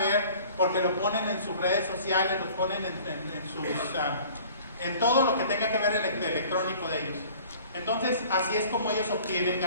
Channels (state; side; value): inverted; both; correlation -0.48